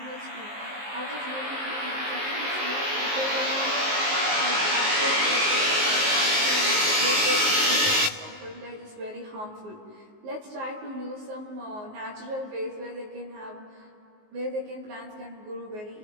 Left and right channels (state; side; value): late; left; 19 ms